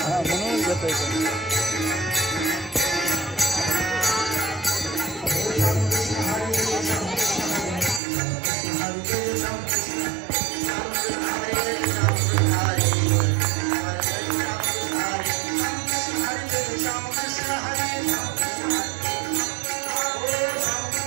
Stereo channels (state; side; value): drops out; left; at 8.0 s